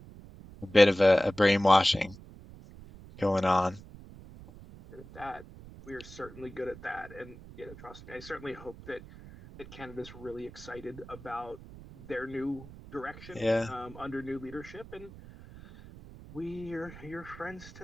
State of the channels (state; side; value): noise; right; rumble, 17 dB below the sound